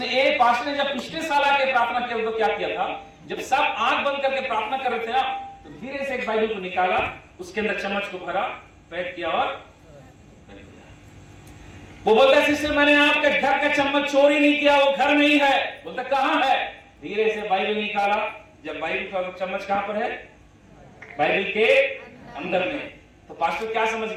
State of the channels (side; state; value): both; identical; correlation 1.00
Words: एक पास्टर ने जब पिछले साल आके प्रार्थना किया तो क्या किया था, जब सब आंख बंद करके प्रार्थना कर रहे थे ना, तो धीरे से एक बाइबल को निकाला, उसके अंदर चम्मच को भरा, पैक किया और वो बोलता है सिस्टर मैंने आपके घर का चम्मच चोरी नहीं किया, वो घर में ही है। बोलता कहां है? धीरे से बाइबल निकाला, जब बाइबल का चम्मच कहां पर है? बाइबल के अंदर में। तो पास्टर क्या समझ